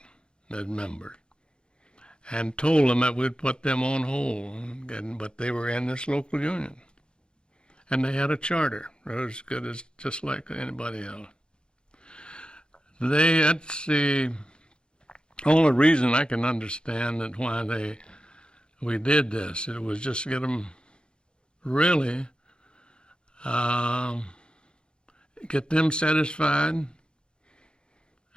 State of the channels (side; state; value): right; late; 0.051 ms